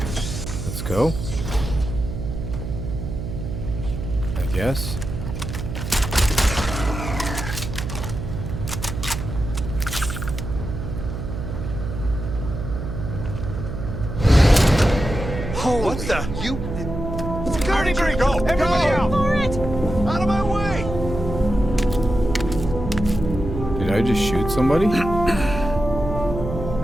go. I guess. What the? You... Security tree, go! Everybody out! For it! Out of my way! Did I just shoot somebody? I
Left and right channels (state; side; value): noise; right; hum, 6 dB below the sound